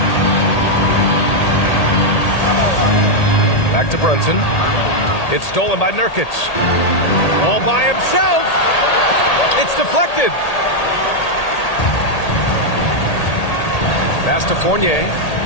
Back to Brunson. It's stolen by Nurkic. All by himself. It's deflected. Pass to Fournier.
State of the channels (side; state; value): right; late; 1.8 ms